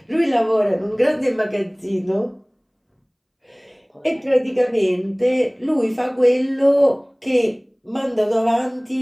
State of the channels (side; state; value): both; identical; correlation 1.00